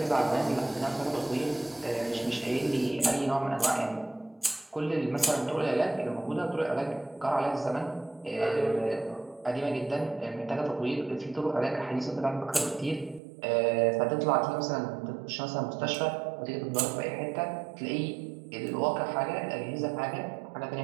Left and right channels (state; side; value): drops out; left; at 13.2 s